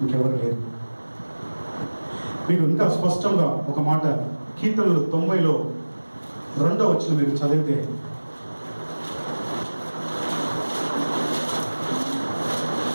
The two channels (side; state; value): both; inverted; correlation -1.00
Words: ఇంకెవరు లేరు. మీకు ఇంకా స్పష్టంగా ఒక మాట, కీర్తనలు 90లో 2వ వచనం మీరు చదివితే,